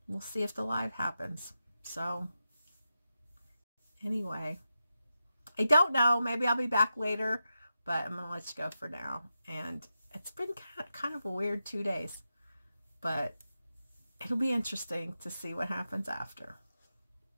we'll see if the live happens. So, anyway, I don't know. Maybe I'll be back later, but I'm going to let you go for now. And it's been kind of a weird 2 days, but it'll be interesting to see what happens after.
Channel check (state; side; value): inverted; both; correlation -0.90